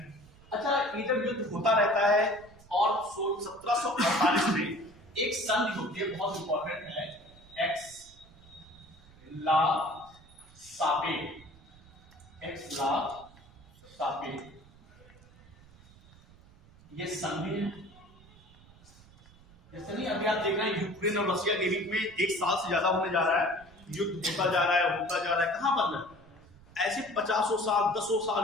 अच्छा, ये जब युद्ध होता रहता है और 1748 में एक संधि होती है, बहुत इंपॉर्टेंट है, एक्स ला सापे, ये संधि है। जैसे नहीं अभी आप देख रहे हैं यूक्रेन और रशिया के बीच में 1 साल से ज्यादा होने जा रहा है, युद्ध होता जा रहा है, कहां बदला? ऐसे 50 साल 10 साल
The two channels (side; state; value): right; noise; rumble, 24 dB below the sound